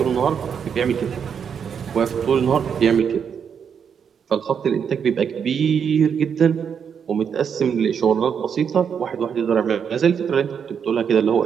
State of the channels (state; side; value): quieter; left; 7.3 dB